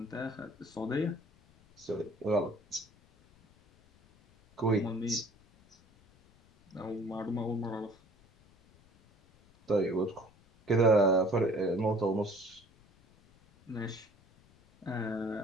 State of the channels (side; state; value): left; noise; rumble, 29 dB below the sound